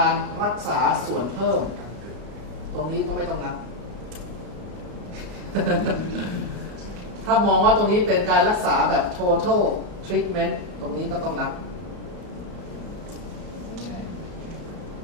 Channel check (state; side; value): late; left; 33 ms